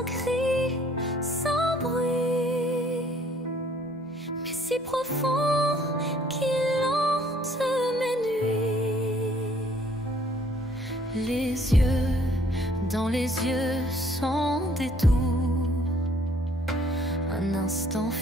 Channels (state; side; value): normal; both; correlation 0.60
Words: cri, sans bruit, mais si profond qu'il hante mes nuits. Les yeux dans les yeux sans détour, un instant